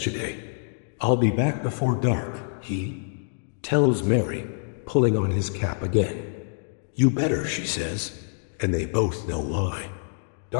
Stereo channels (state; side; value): silent; right; digital silence